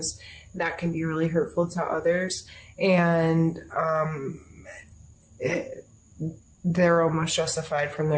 that can be really hurtful to others. And they're almost justified from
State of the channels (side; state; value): both; identical; correlation 1.00